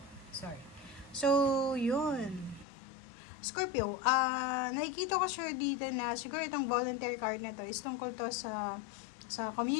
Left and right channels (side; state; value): right; drops out; at 2.7 s